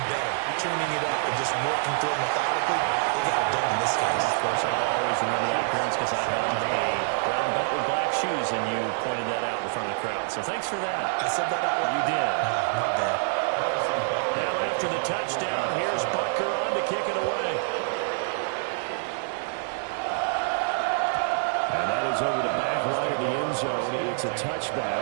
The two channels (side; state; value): left; silent; digital silence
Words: better, tuning it up and just working through it methodically. They got it done in this case. Of course, I'll always remember that appearance because I had on a brown belt with black shoes, and you pointed that out in front of the crowd. So thanks for that. I said that out loud. You did. My bad. Now after the touchdown, here's Butker on to kick it away. And that is over the back line of the end zone. It's a